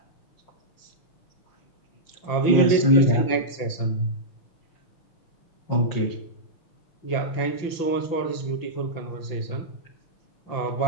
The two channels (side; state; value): right; late; 5.9 ms